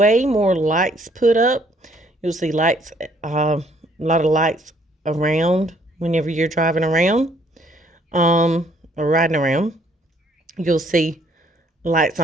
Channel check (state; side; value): normal; both; correlation 0.65